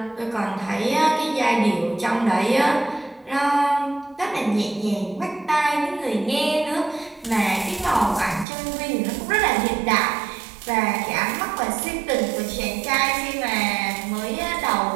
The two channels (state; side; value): drops out; left; at 8.5 s